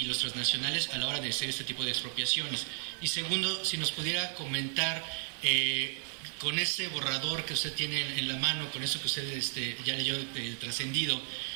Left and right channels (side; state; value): left; silent; digital silence